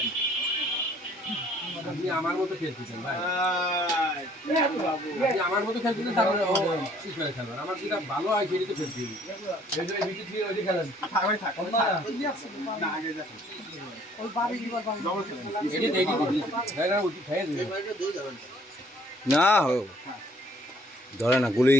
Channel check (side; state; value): both; normal; correlation 0.60